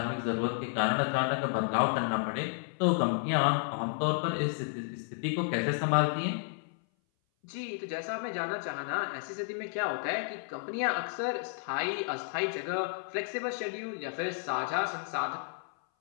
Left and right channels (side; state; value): right; silent; 56 dB below the other